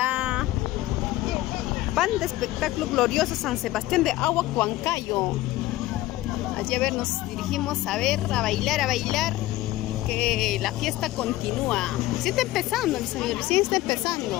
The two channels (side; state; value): right; quieter; 16.8 dB